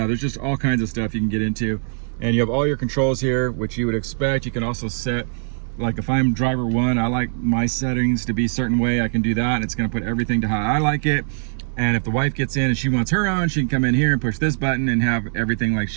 there's just all kinds of stuff you can get into. And you have all your controls here, which you would expect. You can also set, like if I'm driver 1, I like my settings to be a certain way. I can do that, and it's gonna put everything to how I like it. And if the wife gets in and she wants her own, she can come in here and push this button and have everything like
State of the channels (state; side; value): silent; left; 65 dB below the other